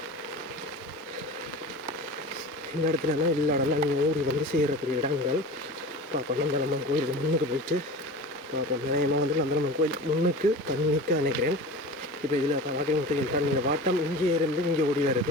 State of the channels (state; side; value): normal; both; correlation 0.34